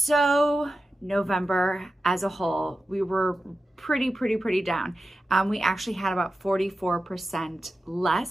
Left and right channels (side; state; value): both; normal; correlation 0.92